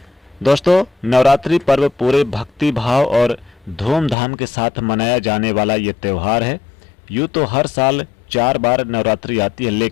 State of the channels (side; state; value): right; drops out; at 4.2 s